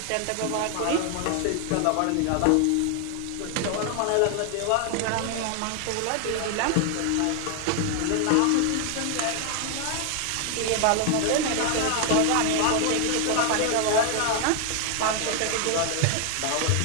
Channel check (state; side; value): different; both; correlation 0.00